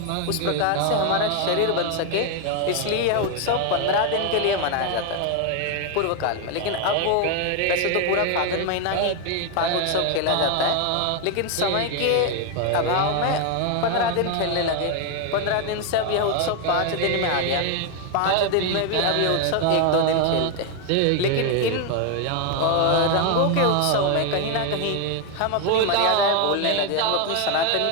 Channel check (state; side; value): different; both; correlation 0.01